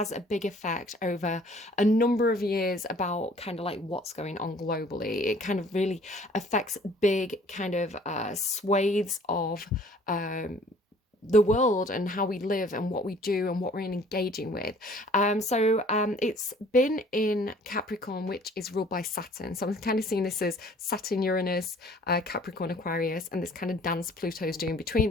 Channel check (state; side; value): normal; both; correlation 0.54